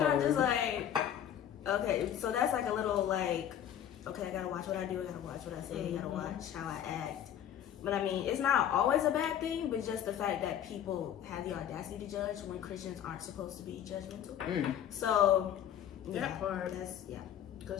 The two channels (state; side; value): quieter; right; 10.2 dB